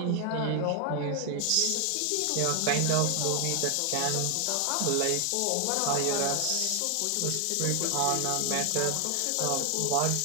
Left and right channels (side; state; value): both; different; correlation 0.00